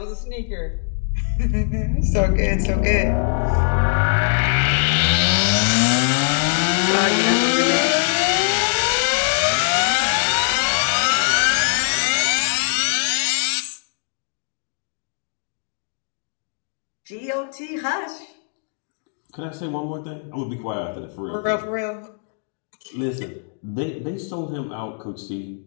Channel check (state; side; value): silent; right; 61 dB below the other